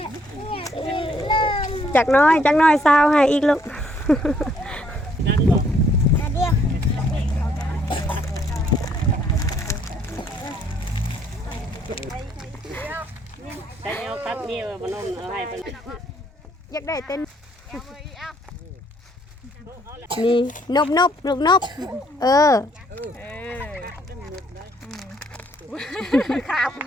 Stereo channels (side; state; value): both; normal; correlation 0.67